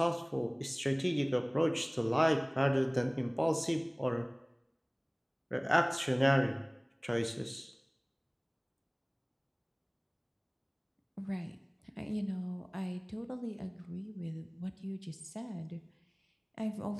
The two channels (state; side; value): identical; both; correlation 1.00